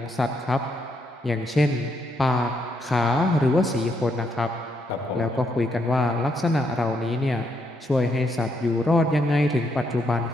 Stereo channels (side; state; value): both; normal; correlation 0.76